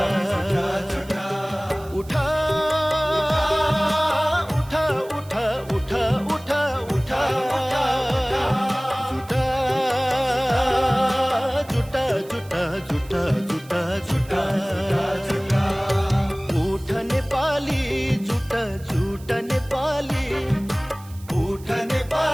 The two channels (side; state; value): right; noise; hiss, 23 dB below the sound